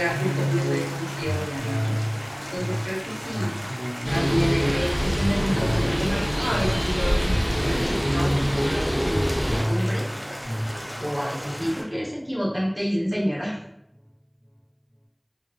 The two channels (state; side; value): identical; both; correlation 1.00